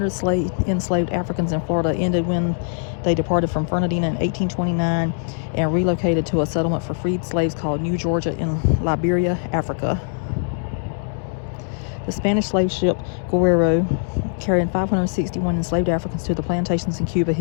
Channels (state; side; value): silent; right; 63 dB below the other